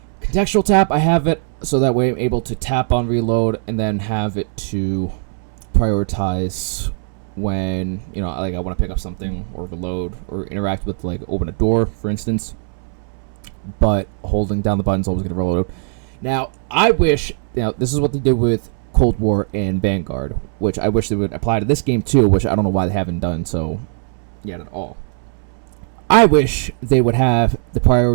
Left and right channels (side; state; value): left; silent; 66 dB below the other